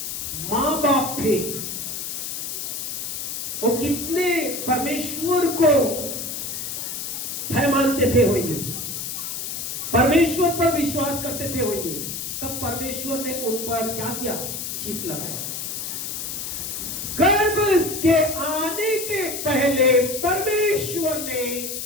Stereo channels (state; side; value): noise; left; hiss, 5 dB below the sound